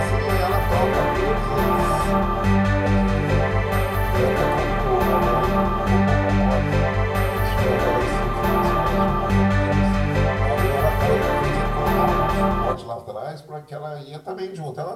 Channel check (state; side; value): identical; both; correlation 1.00